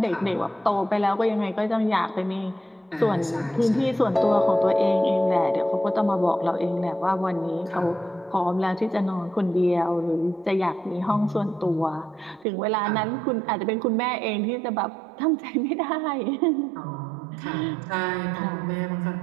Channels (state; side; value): drops out; left; at 12.5 s